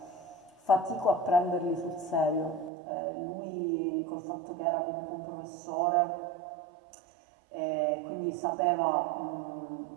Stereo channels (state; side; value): drops out; left; at 2.7 s